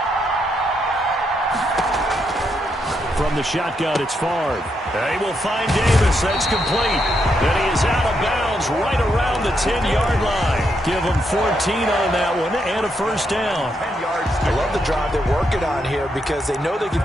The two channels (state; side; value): normal; both; correlation 0.79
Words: From the shotgun, it's Favre. They will find Davis. That's complete. And he is out of bounds right around the 10-yard line. Give him 14 on that one and a 1st down. I love the drive they're working on here because they know they can